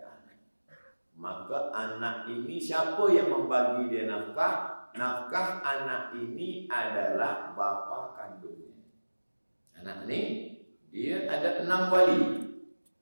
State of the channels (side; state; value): both; inverted; correlation -1.00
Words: anak. Maka anak ini siapa yang membagi dia nafkah? Nafkah anak ini adalah bapa kandungnya. Anak ini dia ada 6 wali.